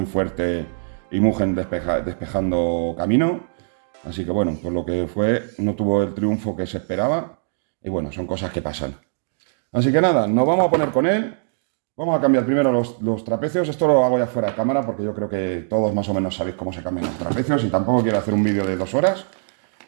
fuerte y Mugen despejando camino. Así que bueno, por lo que fue, no tuvo el triunfo que se esperaba. Y bueno, son cosas que pasan. Así que nada, nos vamos a poner con él. Vamos a cambiar primero los trapecios. Esto lo hago ya fuera de cámara porque yo creo que todos más o menos sabéis cómo se cambian los trapecios y tampoco quiero hacer un vídeo de 2 horas.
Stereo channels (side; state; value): left; silent; 62 dB below the other